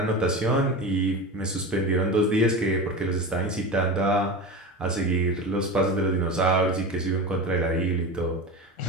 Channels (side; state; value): both; normal; correlation 0.27